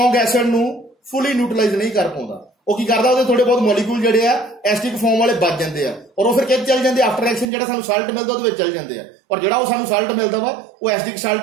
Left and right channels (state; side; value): drops out; left; at 7.5 s